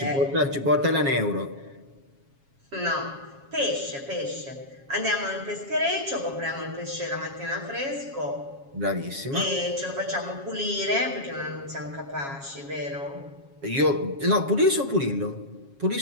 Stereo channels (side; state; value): left; late; 7.3 ms